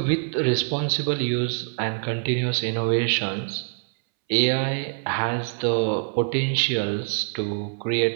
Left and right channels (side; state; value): left; silent; 62 dB below the other